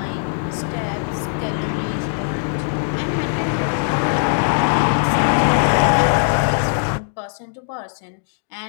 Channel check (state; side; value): silent; right; digital silence